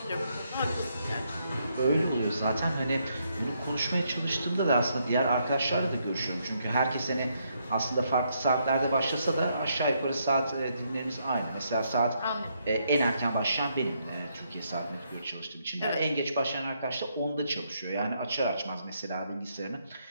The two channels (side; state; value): both; inverted; correlation -0.75